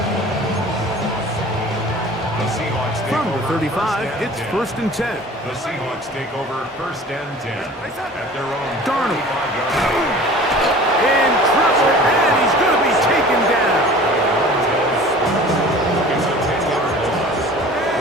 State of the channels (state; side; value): normal; both; correlation 0.44